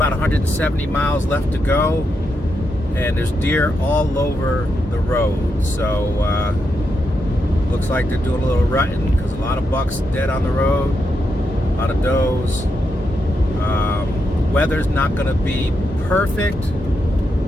170 miles left to go, and there's deer all over the road. So looks like they're doing a little rutting because a lot of bucks dead on the road, a lot of does. Weather's not going to be perfect,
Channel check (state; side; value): normal; both; correlation 0.83